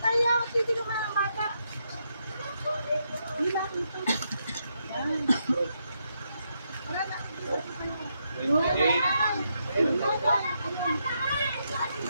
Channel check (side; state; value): both; inverted; correlation -0.80